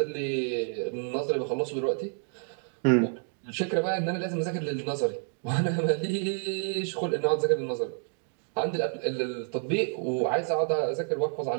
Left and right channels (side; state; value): left; silent; 59 dB below the other